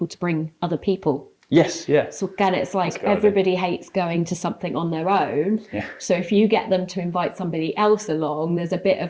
to bring other people. Yes, yeah. So again, it's like everybody hates going to something on their own. Yeah. So if you get them to invite somebody else along, there's a bit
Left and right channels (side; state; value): both; identical; correlation 1.00